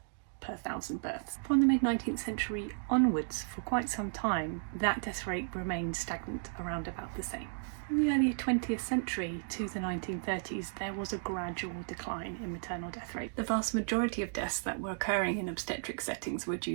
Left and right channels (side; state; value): left; silent; digital silence